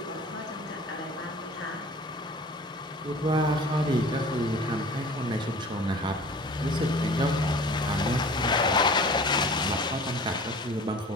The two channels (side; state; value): both; normal; correlation 0.43